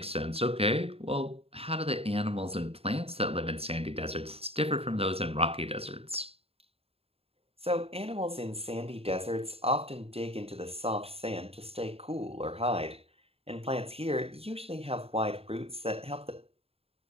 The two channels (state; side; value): late; left; 0.28 ms